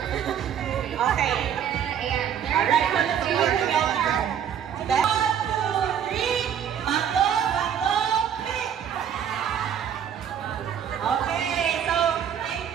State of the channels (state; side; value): quieter; left; 8.8 dB